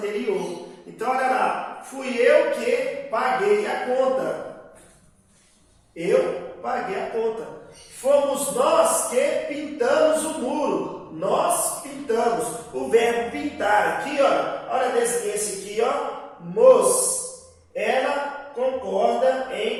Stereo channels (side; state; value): both; identical; correlation 1.00